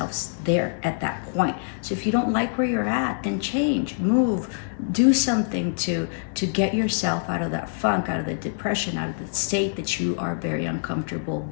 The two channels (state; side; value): silent; right; digital silence